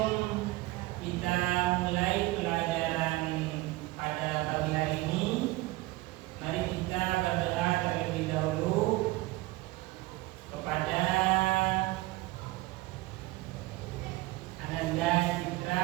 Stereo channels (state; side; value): quieter; left; 19.5 dB